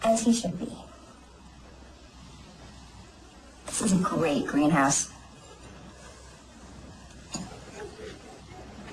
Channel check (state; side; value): identical; both; correlation 1.00